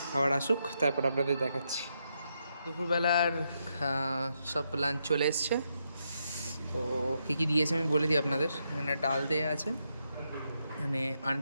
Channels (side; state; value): both; inverted; correlation -0.81